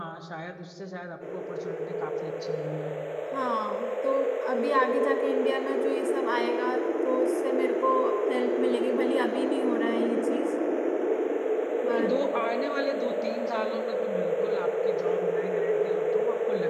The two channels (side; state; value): both; identical; correlation 1.00